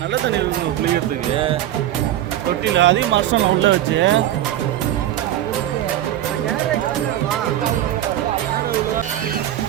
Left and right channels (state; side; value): quieter; left; 12.6 dB